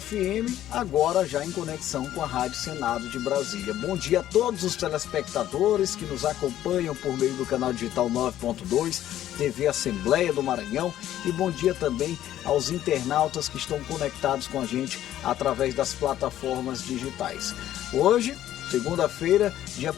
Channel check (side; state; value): right; quieter; 12.5 dB